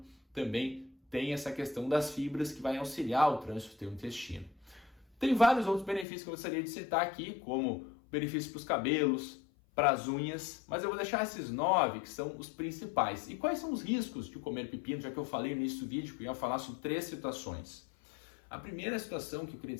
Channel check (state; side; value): drops out; right; at 6.1 s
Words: também tem essa questão das fibras que vai auxiliar o trânsito do teu intestino. Tem vários outros benefícios que eu gostaria de citar aqui, como benefícios para os cabelos, para as unhas, mas eu vou deixar esses 9 que são os principais. E quais são os riscos de comer pepino, já que eu falei no início do vídeo que eu ia falar sobre 3 situações. A primeira situação que eu queria